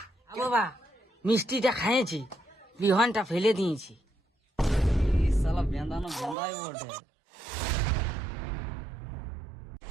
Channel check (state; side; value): drops out; left; at 6.4 s